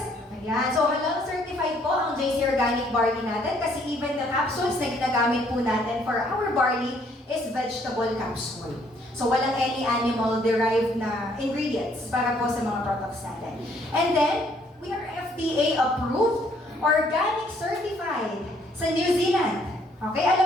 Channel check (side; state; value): both; normal; correlation 0.65